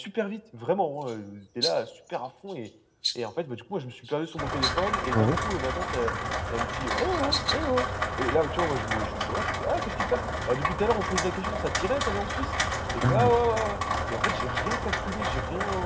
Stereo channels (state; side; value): identical; both; correlation 1.00